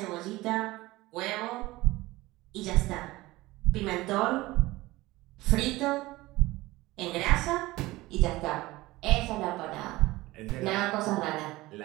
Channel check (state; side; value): quieter; left; 19.2 dB